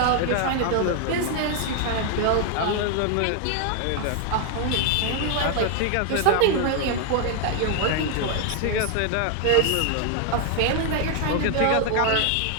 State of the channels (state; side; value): different; both; correlation 0.00